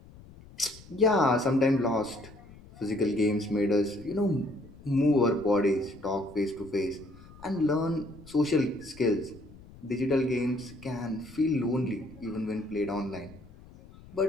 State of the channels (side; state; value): left; noise; rumble, 21 dB below the sound